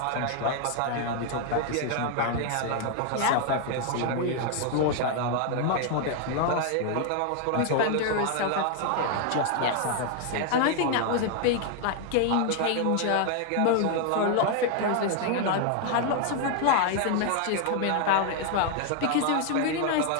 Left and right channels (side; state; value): both; different; correlation 0.00